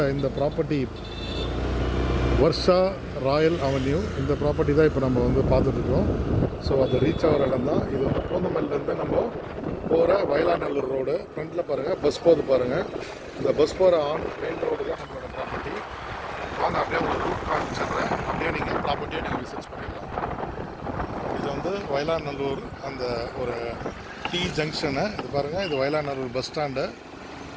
இந்த ப்ராப்பர்ட்டி வர்ஷா ராயல் அவென்யூ. இந்த ப்ராப்பர்ட்டி தான் இப்போ நம்ம வந்து பார்த்துட்ருக்கோம். ஸோ அது ரீச் ஆகிற இடம் தான் இது. வந்து பூந்தமல்லிலேருந்து நம்ம போகிற வயலாநல்லூர் ரோடு. ஃப்ரண்ட்டில் பாருங்கள் பஸ் போகுது பாருங்கள். இந்த பஸ் போகிற மெயின் ரோடு தான் நம்மளோட ப்ராப்பர்ட்டி. வாங்க அப்படியே ஒரு ரூட் காமிச்சிடுறேன். அப்படியே நீங்கள் ப்ராப்பர்ட்டியை நீங்கள் விசிட் பண்ணிடலாம். இது வந்து வயலாநல்லூர் அந்த ஒரு டி ஜங்ஷனு. இது பாருங்கள், இது வயலாநல்லூர் பஸ் ஸ்டாண்டு.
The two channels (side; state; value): both; identical; correlation 1.00